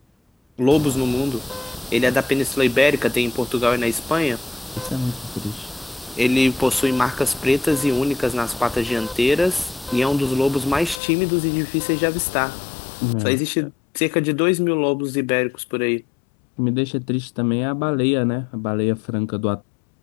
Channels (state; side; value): drops out; right; at 11.0 s